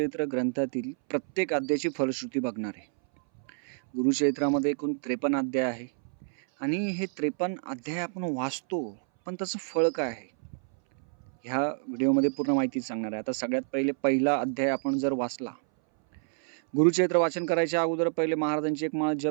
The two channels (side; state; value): left; silent; 59 dB below the other